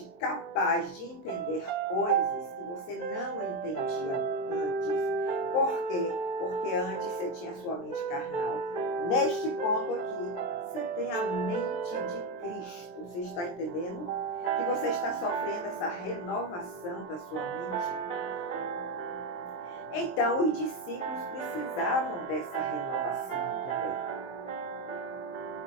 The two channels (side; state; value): right; late; 23 ms